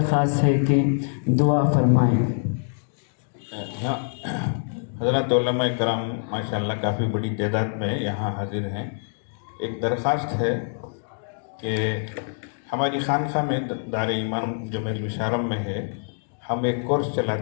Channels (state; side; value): silent; right; digital silence